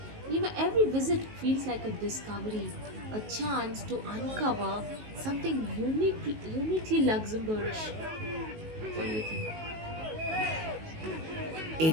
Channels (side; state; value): left; late; 19 ms